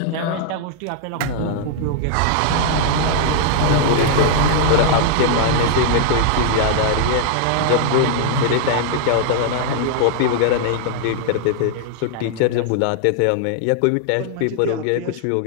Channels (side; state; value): both; different; correlation -0.01